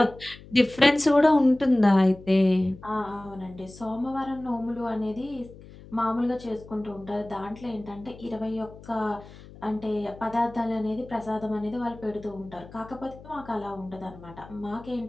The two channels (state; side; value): noise; left; hum, 19 dB below the sound